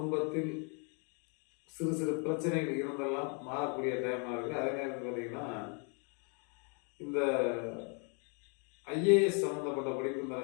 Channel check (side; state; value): right; quieter; 38.2 dB